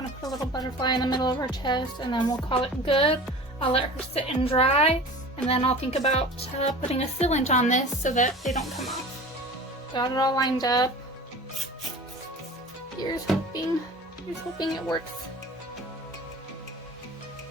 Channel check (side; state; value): both; normal; correlation 0.38